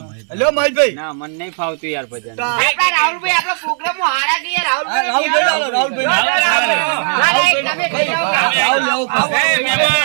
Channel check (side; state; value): left; silent; 68 dB below the other